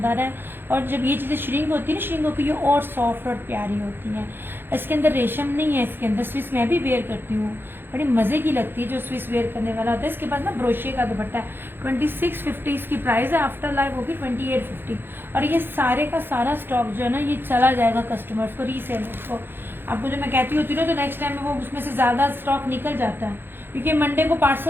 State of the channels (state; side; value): late; left; 0.10 ms